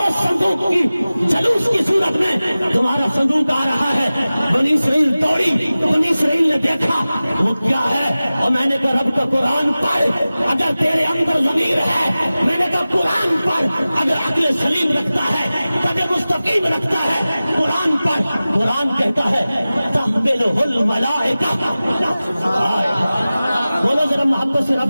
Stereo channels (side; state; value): both; inverted; correlation -0.97